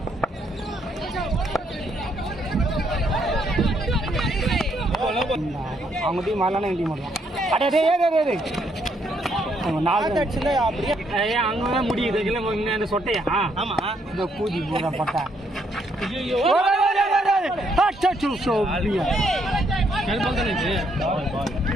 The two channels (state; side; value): normal; both; correlation 0.72